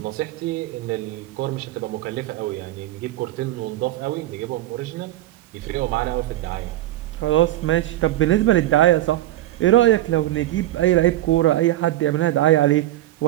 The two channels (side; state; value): left; quieter; 14.7 dB